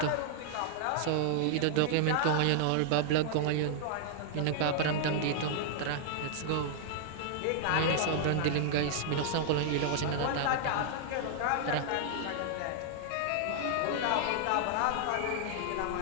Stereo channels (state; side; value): different; both; correlation -0.01